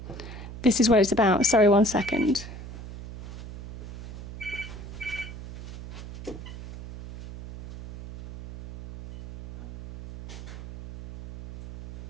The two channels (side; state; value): right; noise; hum, 12 dB below the sound